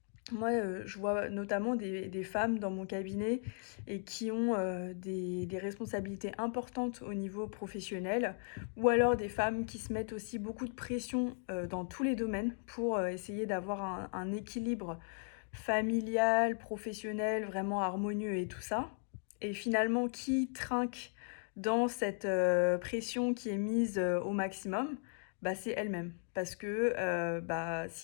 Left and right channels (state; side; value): silent; right; 53 dB below the other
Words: Moi, je vois notamment des femmes dans mon cabinet et qui ont, des responsabilités importantes au niveau professionnel ou alors des femmes qui se mettent aussi beaucoup de pression, dans tous les domaines pour, essayer d'avoir un équilibre familial, professionnel, vraiment harmonieux et tout ça et finalement qui trinque dans cette, pression qui est mise, au maximum, bah, c'est elles-mêmes. Parce que, bah,